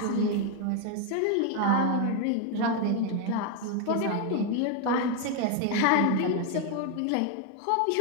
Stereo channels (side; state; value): both; different; correlation 0.01